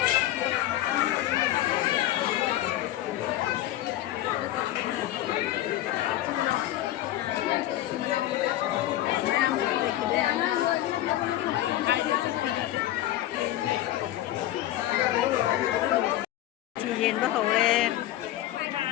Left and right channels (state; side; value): quieter; right; 14.3 dB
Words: Nhìn bắt đầu lên